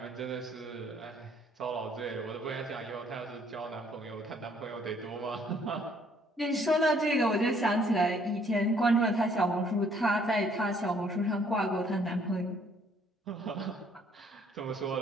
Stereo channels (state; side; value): normal; both; correlation 0.63